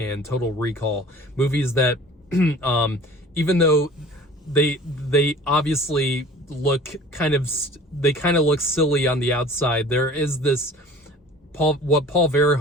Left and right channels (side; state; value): both; normal; correlation 0.45